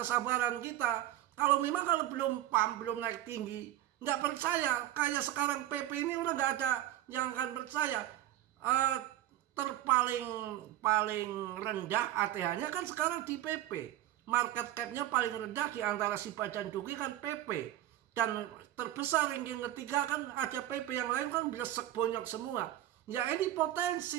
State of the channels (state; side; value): quieter; left; 13.4 dB